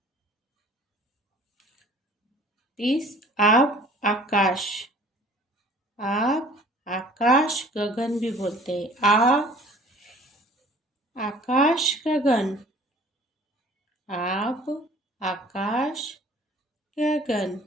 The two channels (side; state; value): both; normal; correlation 0.50